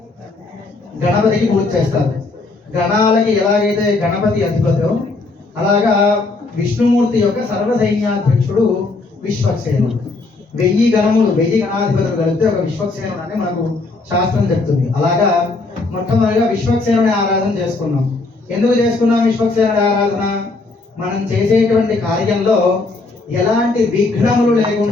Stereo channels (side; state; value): right; quieter; 3.5 dB